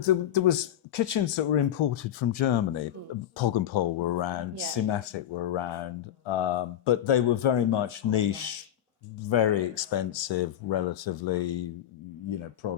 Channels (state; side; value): quieter; right; 11.1 dB